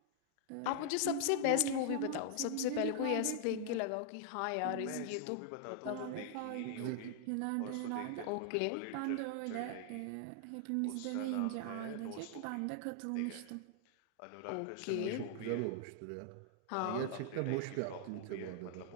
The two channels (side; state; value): both; different; correlation 0.00